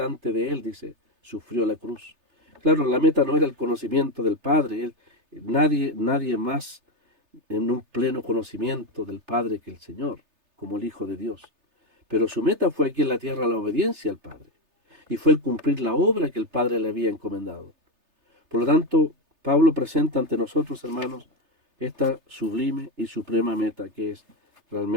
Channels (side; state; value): left; late; 3.3 ms